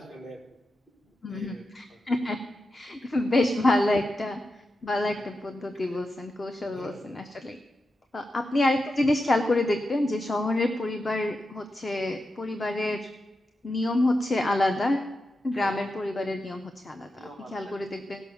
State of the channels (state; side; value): normal; both; correlation 0.89